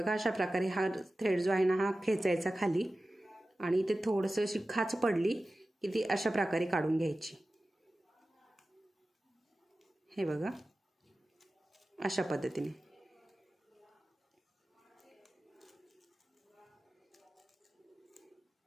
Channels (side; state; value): both; normal; correlation 0.95